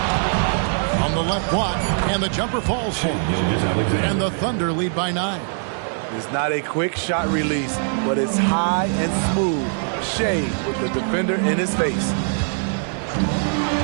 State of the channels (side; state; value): left; silent; 61 dB below the other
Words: On the left block, and the jumper falls for him. And the Thunder lead by 9. It's not a quick shot release, but it's high and smooth. Shea with the defender in his face.